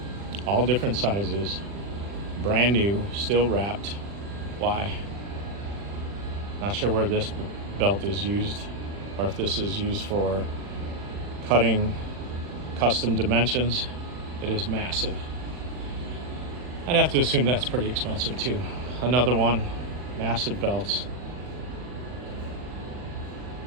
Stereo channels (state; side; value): late; left; 40 ms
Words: all different sizes, brand new, still wrapped. Why? Not sure where this belt is used, or if this is used for cutting custom dimensions. It is massive. I'd have to assume that's pretty expensive too. Another one, massive belts.